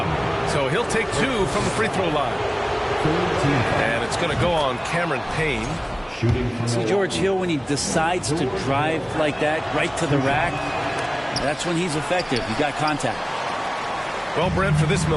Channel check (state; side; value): identical; both; correlation 1.00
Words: So he'll take 2 from the free throw line. And it's going to go on Cameron Payne. See George Hill, when he decides to drive like that right to the rack, that's when he's effective. He got contact. Well, Brent, for this